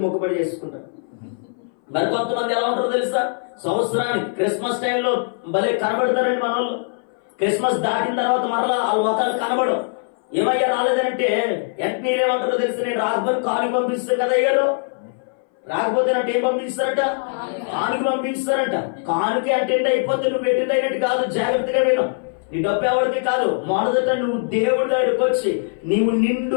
మొక్కుబడి చేసుకుంటారు. మరి కొంతమంది ఎలా ఉంటారో తెలుసా? సంవత్సరానికి క్రిస్మస్ టైంలో భలే కనబడతారండి మన వాళ్ళు. క్రిస్మస్ దాటిన తర్వాత మరలా వాళ్ళ మొక్కలు కనబడవు. ఏమయ్యా రాలేదంటే వెంటనే ఏమంటారో తెలుసు, నేను రాకపోతే కానుక పంపిస్తాను కదా అయ్యారు. రాకపోతే అంటే ఏం పంపిస్తారట? కానుక పంపిస్తారంట. కానుక అటెండ్ అయిపోతే నువ్వు అటెండ్ అయినట్టు కాదు. జాగ్రత్తగా విను. నీ డబ్బు ఎవరికి కాదు. మొదట నువ్వు దేవుడి దగ్గరికి వచ్చి నీవు నిండు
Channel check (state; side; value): silent; right; 60 dB below the other